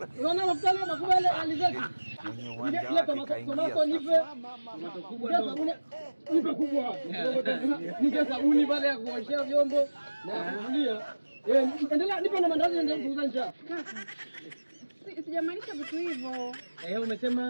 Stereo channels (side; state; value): both; inverted; correlation -1.00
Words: Unaona mafuta leo makubwa ile alizeti. Ile tomato nipe. Tomato kubwa ndo. Nipe kubwa. Nige sabuni pale ya kuoshea vyombo na kufulia. Endelea nipe na mandazi ndio kuuza njaa. Kaka. Sijamaanisha vitu hivyo.